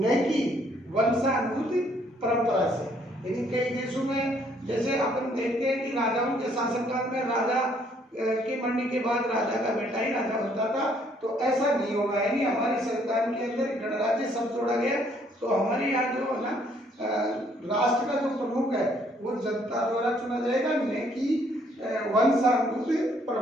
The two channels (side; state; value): both; normal; correlation 0.66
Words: कि वंशानुगत परंपरा से। यानी कई देशों में जैसे अपन देखते हैं कि राजाओं के शासनकाल में राजा के मरने के बाद राजा का बेटा ही राजा बनता था, तो ऐसा नहीं होगा। यानी हमारे संविधान के अंदर गणराज्य शब्द जोड़ा गया। तो हमारे यहाँ जो है ना राष्ट्र का जो प्रमुख है वो जनता द्वारा चुना जाएगा, न कि वंशानुगत